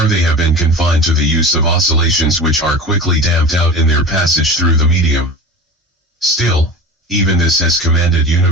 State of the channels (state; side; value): normal; both; correlation 0.33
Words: they have been confined to the use of oscillations which are quickly damped out in their passage through the medium. Still, even this has commanded